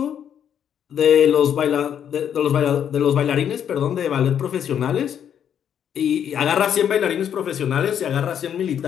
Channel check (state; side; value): quieter; right; 9.0 dB